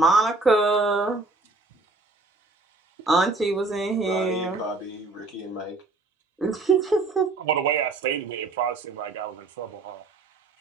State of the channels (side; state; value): left; quieter; 3.4 dB